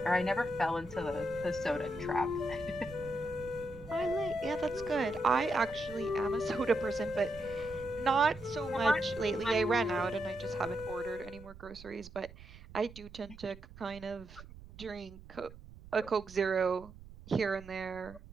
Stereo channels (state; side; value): noise; right; rumble, 17 dB below the sound